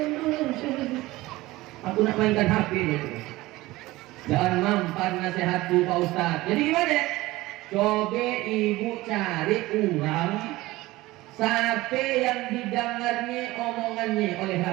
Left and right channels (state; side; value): quieter; left; 18.9 dB